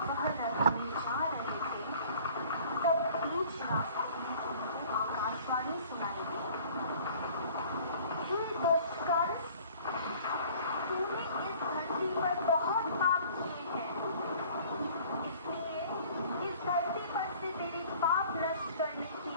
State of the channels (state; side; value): inverted; both; correlation -0.50